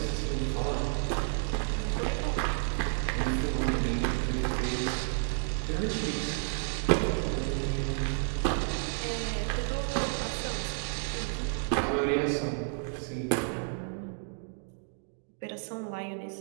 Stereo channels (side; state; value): left; silent; 57 dB below the other